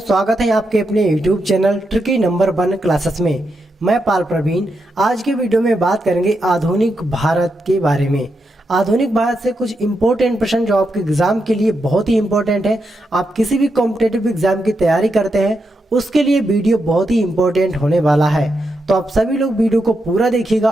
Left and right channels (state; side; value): normal; both; correlation 0.84